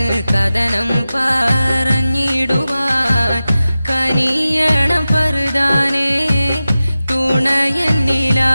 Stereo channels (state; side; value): inverted; both; correlation -0.95